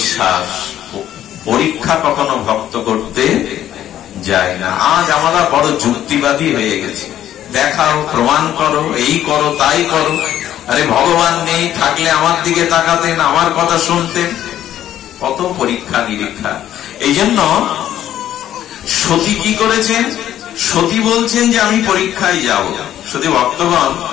পরীক্ষা কখনো ভক্ত করতে যায় না। আজ আমরা বড় যুক্তিবাদী হয়ে গেছি, দেখাও, প্রমাণ করো, এই করো, তাই করো। আরে ভগবান নেই, থাকলে আমার দিকে তাকাতেন, আমার কথা শুনতেন। কত পরীক্ষা নিরীক্ষা। এই জন্য সতী কি করেছেন? সতী বলছেন যে আমি পরীক্ষায় যাব। সতী ভক্তগণ,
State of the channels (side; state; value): right; quieter; 11.7 dB